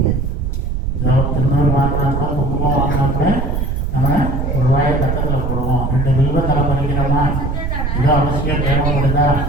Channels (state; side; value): noise; right; rumble, 1 dB below the sound